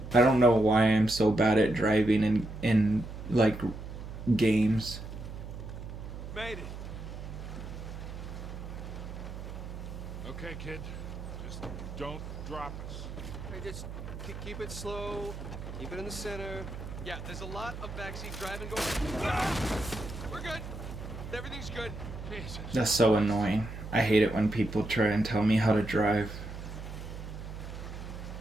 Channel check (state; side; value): noise; right; hum, 9 dB below the sound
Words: I don't know why I'm so bad at driving in like games. Made it. Okay, kid. Just don't drop us. Hey, just keep it slow. Keep it in the center. Yeah, there's a lot of backseat driving going. We're good. Everything's good. Jesus. That's so annoying. I hate it when people try and tell me how to drive.